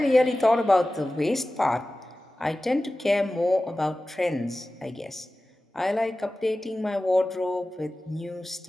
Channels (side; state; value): both; normal; correlation 0.96